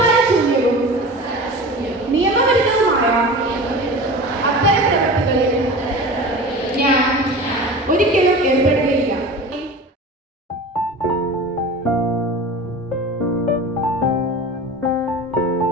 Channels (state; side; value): normal; both; correlation 0.34